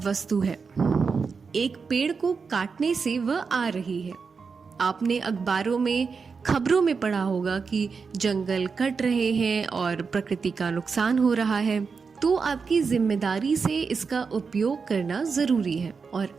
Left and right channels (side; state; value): left; quieter; 5.2 dB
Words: वस्तु है। एक पेड़ को काटने से वह आ रही है। आपने अखबारों में, खबरों में पढ़ा होगा कि जंगल कट रहे हैं और प्रकृति का नुकसान हो रहा है, तो आपकी जिम्मेदारी से इसका उपयोग करना जरूरी है। और